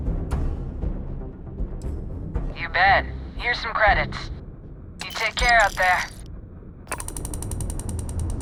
You bet. Here's some credits. You take care out there.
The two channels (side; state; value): both; identical; correlation 1.00